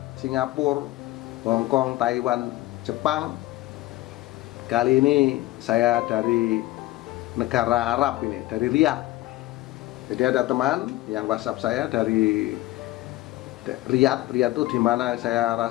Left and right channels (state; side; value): quieter; right; 17.3 dB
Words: Singapura, Hong Kong, Taiwan, Jepang. Kali ini saya dari negara Arab ini, dari Riyadh. Jadi ada teman yang WhatsApp saya dari Riyadh. Riyadh itu di mana saya